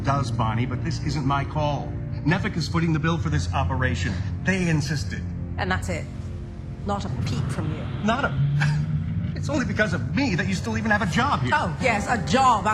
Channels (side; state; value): both; identical; correlation 1.00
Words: Bonnie, but this isn't my call. Nevik is footing the bill for this operation. They insisted. And that's it. Not a peep from you. Not a... It's only because of me that you still even have a job here. Oh, yes, a job